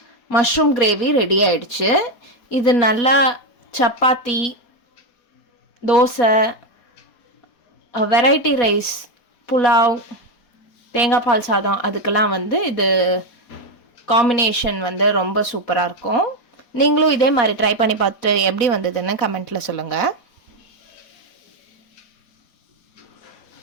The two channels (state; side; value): late; right; 4.2 ms